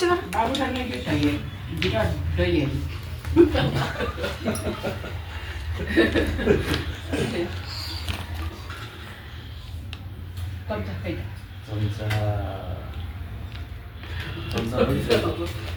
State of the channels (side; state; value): both; identical; correlation 1.00